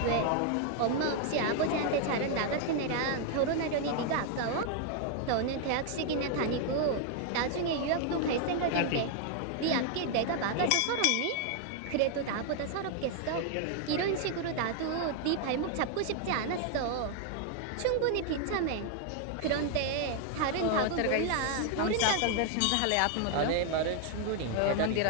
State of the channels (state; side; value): different; both; correlation 0.00